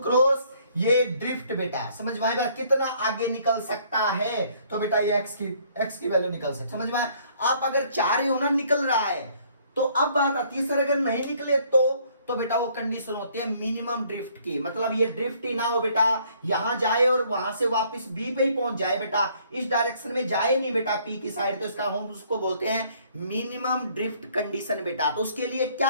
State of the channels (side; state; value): both; inverted; correlation -0.62